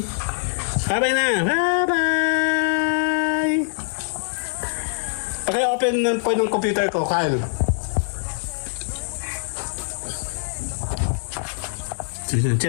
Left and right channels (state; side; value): silent; right; digital silence